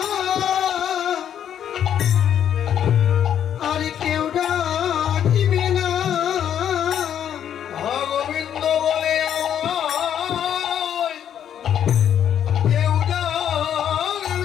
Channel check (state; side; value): quieter; right; 9.5 dB